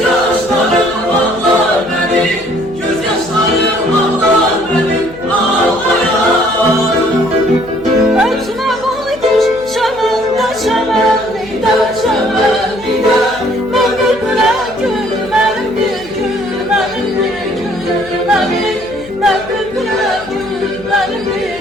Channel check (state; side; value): noise; left; hum, 19 dB below the sound